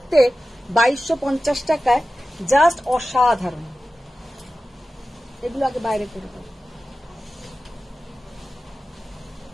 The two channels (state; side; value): normal; both; correlation 0.94